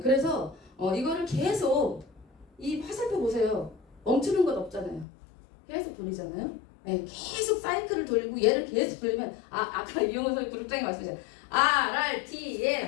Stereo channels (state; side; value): drops out; right; at 5.1 s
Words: 그래서 이거를 계속 이 화살표 보세요. 멈추는 것 없잖아요. 계속 돌리잖아요. 계속 사이클을 돌리고 얘를 계속 돌리면 아까 이용호 선생님 그룹장이 말씀하셨죠.